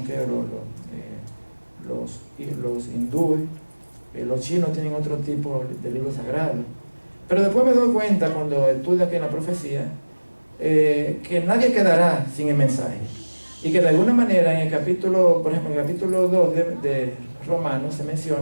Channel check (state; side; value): inverted; both; correlation -1.00